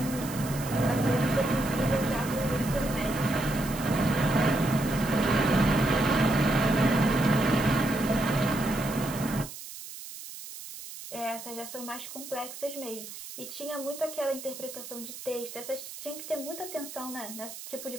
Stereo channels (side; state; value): right; noise; hiss, 12 dB below the sound